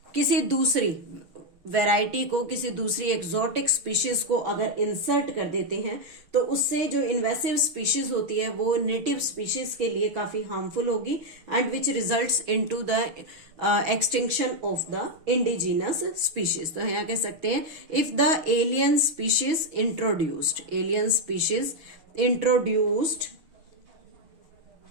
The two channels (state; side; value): late; left; 6.6 ms